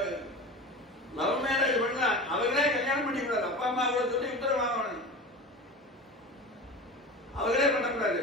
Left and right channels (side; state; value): both; normal; correlation 0.31